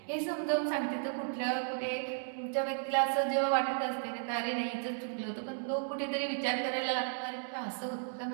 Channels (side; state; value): left; silent; digital silence